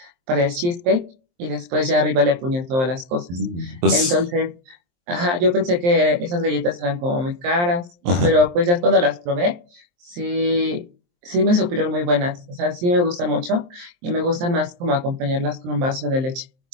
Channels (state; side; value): late; left; 23 ms